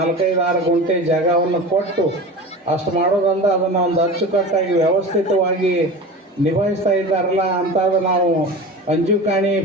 ಗುಂಟೆ ಜಾಗವನ್ನು ಕೊಟ್ಟು ಅಷ್ಟು ಮಾಡೋದ್ರಿಂದ ಅದನ್ನು ಒಂದು ಅಚ್ಚುಕಟ್ಟಾಗಿ ವ್ಯವಸ್ಥಿತವಾಗಿ ನಿಭಾಯಿಸ್ತಾ ಇದ್ದಾರಲ್ಲ ಅಂತ ನಾವು ಅಂಜುಕಾಣಿ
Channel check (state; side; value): normal; both; correlation 0.31